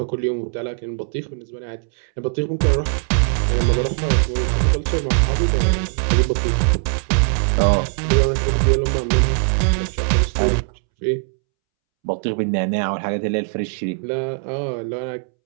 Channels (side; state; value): left; silent; 66 dB below the other